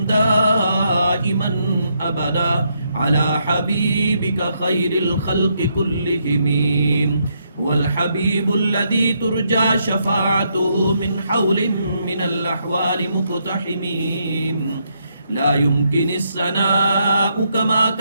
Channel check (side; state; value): both; inverted; correlation -0.76